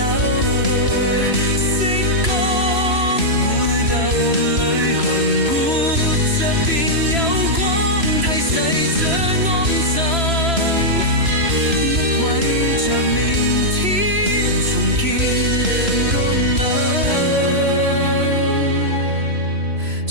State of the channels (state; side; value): late; left; 3.0 ms